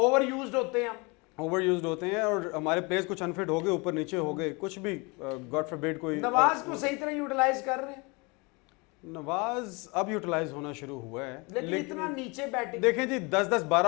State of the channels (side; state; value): right; quieter; 28.3 dB